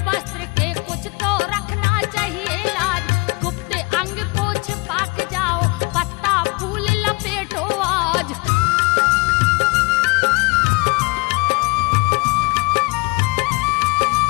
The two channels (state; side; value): quieter; right; 27.2 dB